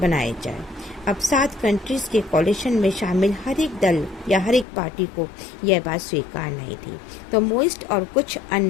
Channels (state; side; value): drops out; right; at 4.7 s